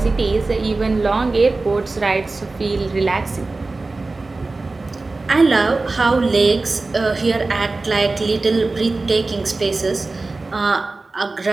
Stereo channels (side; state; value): left; quieter; 3.5 dB